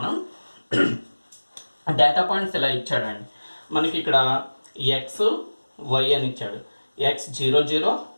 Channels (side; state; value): both; inverted; correlation -1.00